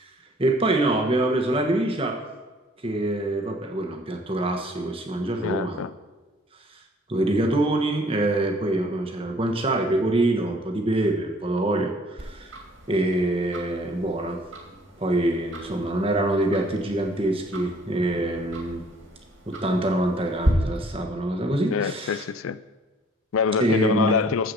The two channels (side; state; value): both; normal; correlation 0.57